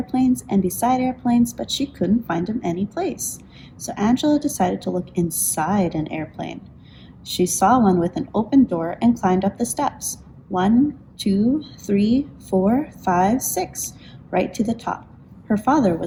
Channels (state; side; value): identical; both; correlation 1.00